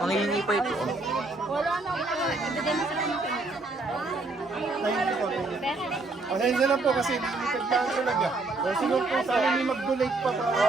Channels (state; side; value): quieter; left; 3.3 dB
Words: pa ito. Pasensya lang po kasi limited lang talaga. Kung sino po sa amin may mag-donate pa